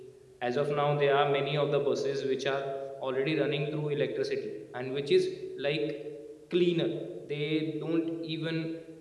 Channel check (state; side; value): identical; both; correlation 1.00